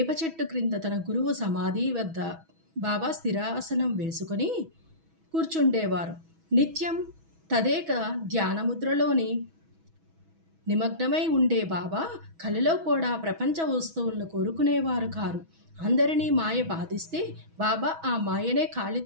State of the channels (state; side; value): late; left; 6.2 ms